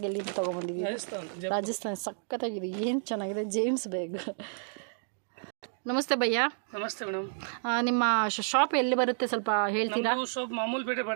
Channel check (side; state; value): left; silent; digital silence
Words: ಎಲ್ಲಿಂದ ತೊಗೊಂಬಂದಿದ್ದೀವಿ? ರಾಜಸ್ಥಾನ. ಸಖತ್ತಾಗಿದೆ, ಏನು ಚೆನ್ನಾಗಿದೆ. James bag. ನಮಸ್ತೆ ಭಯ್ಯ. ನಮಸ್ತೆ ಮೇಡಮ್. ನಿಮ್ಮ ಶಾಪ್ ಎಲ್ಲಿ ಬರುತ್ತೆ ಸ್ವಲ್ಪ ಹೇಳ್ತೀರಾ? ಶಾಪ್ ಮಾಮೂಲ್ ಪೇಟೆ